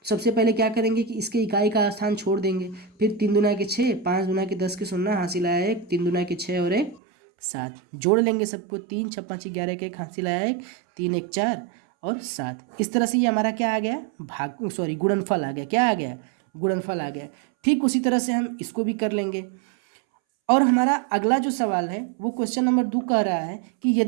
सबसे पहले क्या करेंगे कि इसके इकाई का स्थान छोड़ देंगे। फिर 3 दूना के 6, 5 दूना के 10 के 0 हासिल आया 1, 3 दूना के 6 और 1 7। जोड़ लेंगे सबको, 3 6 5 11 के 1 हासिल आया 1, 3 1 4 और 7। इस तरह से ये हमारा क्या आ गया, गुणनफल आ गया। क्या आ गया, गुणनफल आ गया। ठीक उसी तरह से हम इसको भी कर लेंगे। और हमारा अगला जो सवाल है वो क्वेश्चन नंबर 2 कह रहा है कि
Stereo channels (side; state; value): left; drops out; at 7.0 s